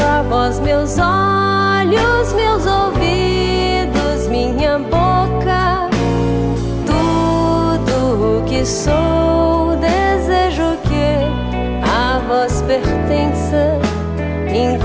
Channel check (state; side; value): identical; both; correlation 1.00